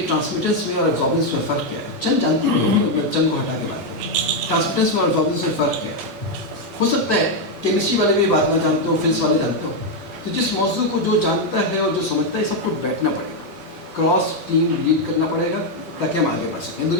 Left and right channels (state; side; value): normal; both; correlation 0.03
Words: ٹرانسمیٹنس میں اور ایبزاربنس میں فرق کیا ہے. چند جانتے ہیں, میں چند کو ہٹا کے بات کروں. ٹرانسمیٹنس میں اور ایبزاربنس میں فرق کیا ہے. ہو سکتا ہے کیمسٹری والے بھی بات نہ جانتے ہو, فزکس والے جانتے ہو. تو جس موضوع کو جو جانتا ہے اور جو سمجھتا ہے سب کو بیٹھنا پڑے گا, کراس ٹیم لیڈ کرنا پڑے گا تاکہ ہم آگے بڑھ سکیں.